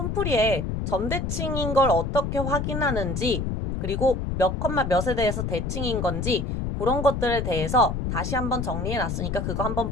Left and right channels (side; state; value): left; noise; rumble, 2 dB below the sound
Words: 점대칭인 걸 어떻게 확인하는지 그리고 몇 컴마 몇에 대해서 대칭인 건지 그런 것들에 대해서 다시 한번 정리해놨으니까 그거 한번